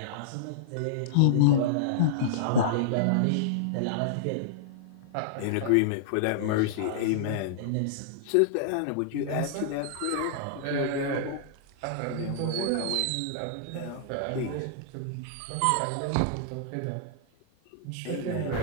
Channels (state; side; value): different; both; correlation -0.02